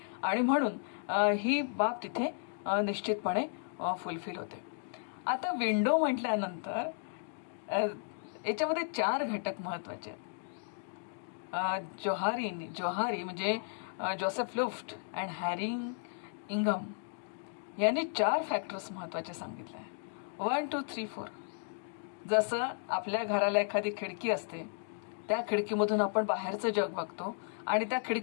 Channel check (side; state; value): right; silent; digital silence